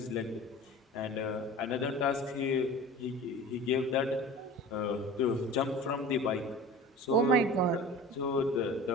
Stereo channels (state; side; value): normal; both; correlation 0.38